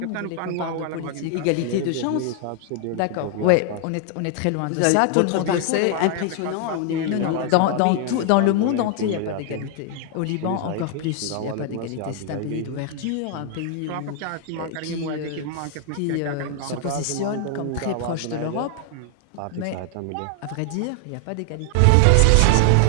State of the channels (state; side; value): different; both; correlation 0.00